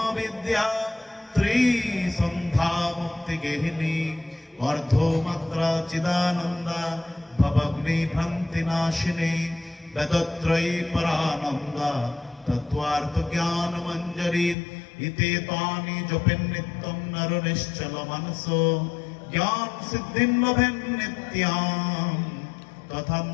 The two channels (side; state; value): right; drops out; at 14.6 s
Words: বিদ্যা ত্রিসন্ধ্যা মুক্তি গেহিনী অর্ধমাত্রা চিদানন্দা ভবগ্নি ভ্রান্তি নাশিনী বেদত্রয়ী পরানন্দা তত্ত্বার্থ জ্ঞান মঞ্জরি ইতে তানি জপেন নিত্যম নর নিশ্চল মনসো জ্ঞান সিদ্ধিম লভেন নিত্যাম